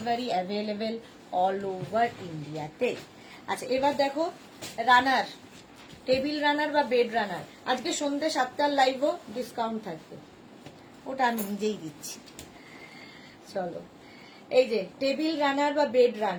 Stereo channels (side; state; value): both; identical; correlation 1.00